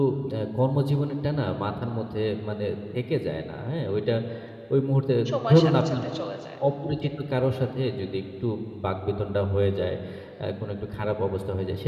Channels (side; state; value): both; identical; correlation 1.00